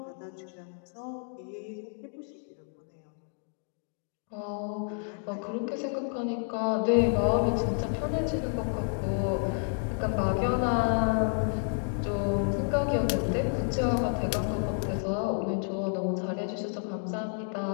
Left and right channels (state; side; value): silent; right; 58 dB below the other